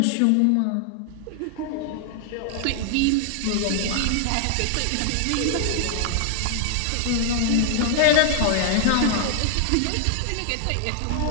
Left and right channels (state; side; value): different; both; correlation 0.00